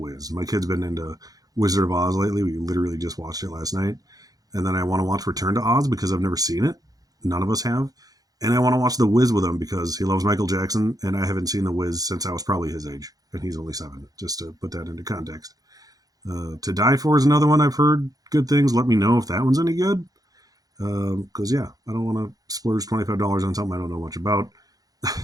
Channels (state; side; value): late; left; 0.18 ms